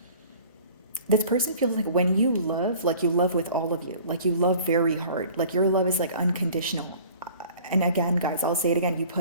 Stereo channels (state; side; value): inverted; both; correlation -0.47